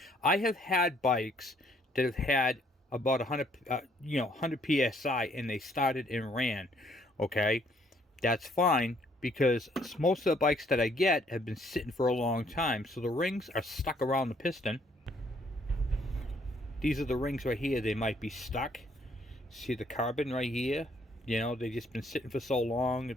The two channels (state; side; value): normal; both; correlation 0.65